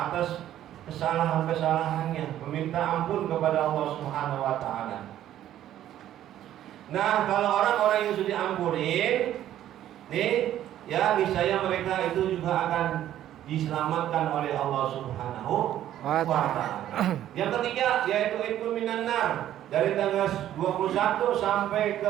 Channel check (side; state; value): left; quieter; 12.0 dB